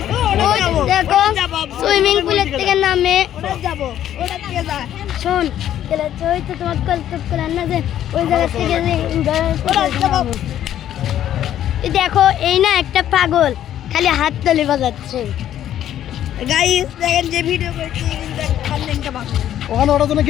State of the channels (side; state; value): right; quieter; 11.4 dB